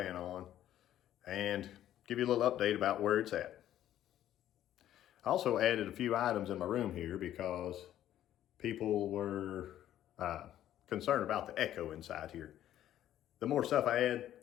on and give you a little update about where it's at. I also added a few items in my room here because people were concerned about the echo inside here. The more stuff I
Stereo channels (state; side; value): quieter; right; 12.0 dB